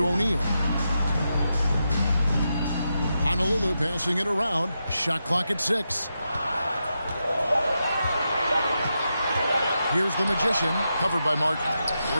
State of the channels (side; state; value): both; inverted; correlation -0.86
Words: O'Neal. Honolulu passing it around. Shot clock at 6. Here's the Magician, covered by Martin.